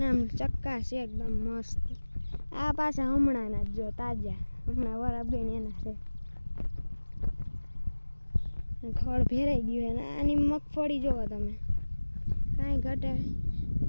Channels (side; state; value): both; inverted; correlation -1.00